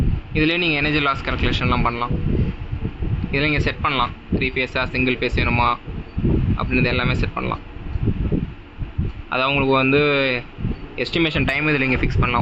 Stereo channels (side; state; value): both; identical; correlation 1.00